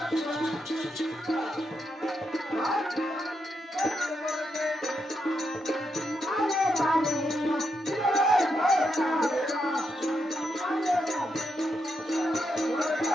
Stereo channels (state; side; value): normal; both; correlation 0.82